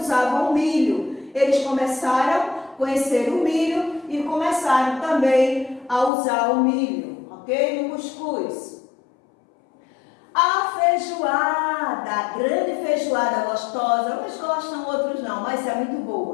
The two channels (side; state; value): right; drops out; at 6.1 s